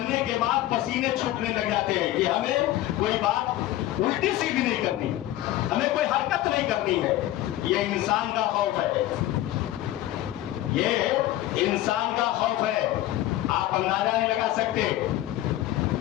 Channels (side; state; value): right; quieter; 14.7 dB